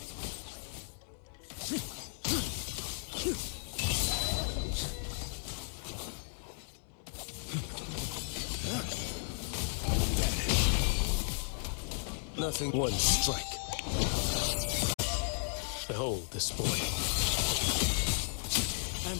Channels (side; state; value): right; silent; digital silence